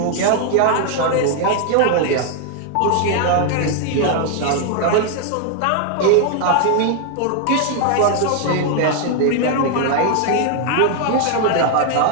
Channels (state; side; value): different; both; correlation 0.00